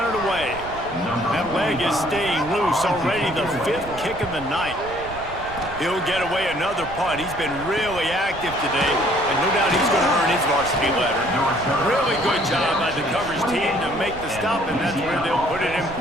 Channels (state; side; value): noise; right; rumble, 15 dB below the sound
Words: it away. That leg is staying loose, already the 5th kick of the night. He'll get away another punt. He's been really active today, and no doubt he's going to earn his varsity letter. Really good job by the coverage team to make the stop, and that's where they'll put it in